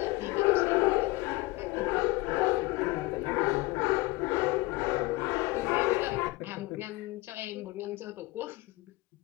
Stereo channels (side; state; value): right; quieter; 21.6 dB